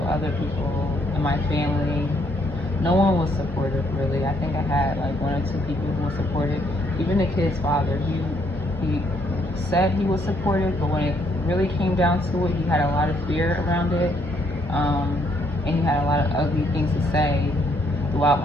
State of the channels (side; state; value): both; normal; correlation 0.70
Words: other people in my family. No one was supportive, really. I think I had like 1 or 2 people who were supportive. Even the kid's father, he said he was supportive, but when it really came down to it, he had a lot of fear around it, and he had a lot of ugly things to say throughout